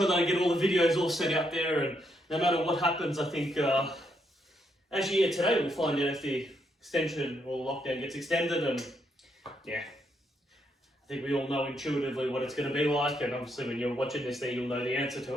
that I get all the videos all set out there, and no matter what happens, I think, actually, yeah, today we'll find out if the extension or lockdown gets extended, and yeah, I think we all know intuitively what it's going to be like, and obviously when you're watching this there, you'll know the answer to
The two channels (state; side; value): normal; both; correlation 0.77